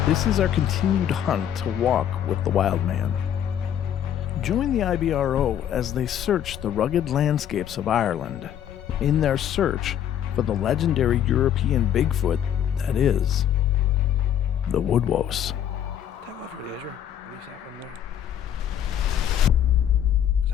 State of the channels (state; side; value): quieter; right; 9.9 dB